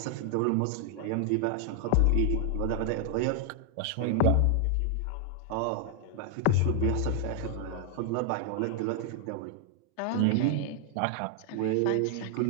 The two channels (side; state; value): both; different; correlation 0.00